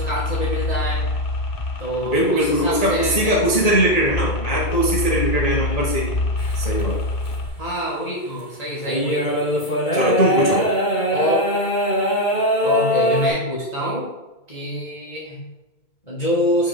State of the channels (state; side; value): late; right; 2.2 ms